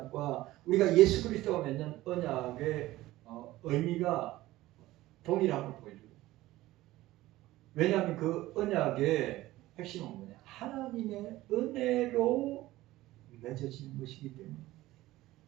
우리가 예수 그리스도와 맺는 언약의 의미가 동일함을 보여줘요. 왜냐하면 그 언약의 핵심은 뭐냐? 하나님의 은혜로 맺어지는 것이기 때문에.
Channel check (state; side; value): quieter; left; 16.9 dB